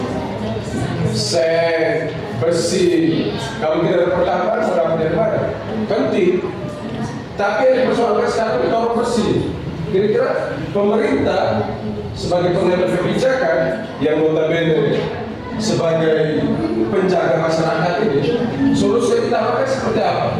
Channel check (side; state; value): both; identical; correlation 1.00